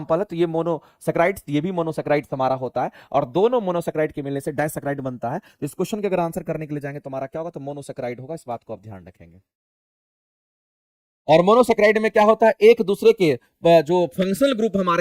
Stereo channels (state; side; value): identical; both; correlation 1.00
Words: है, तो ये मोनोसैकेराइड्स, ये भी मोनोसैकेराइड्स हमारा होता है, और दोनों मोनोसैकेराइड के मिलने से डाइसैकेराइड बनता है। इस क्वेश्चन के अगर आंसर करने के लिए जाएंगे तो हमारा क्या होगा, तो मोनोसैकेराइड होगा, इस बात को आप ध्यान रखेंगे। और मोनोसैकेराइड में क्या होता है, एक दूसरे के जो फंक्शनल ग्रुप